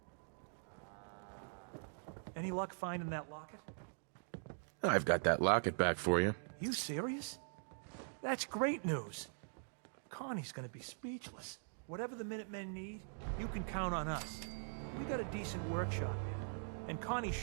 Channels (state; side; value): silent; left; digital silence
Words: Any luck finding that locket? I've got that locket back for you. You serious? That's great news. Connie's gonna be speechless. Whatever the Minutemen need, you can count on us. We got a decent workshop here, and Connie's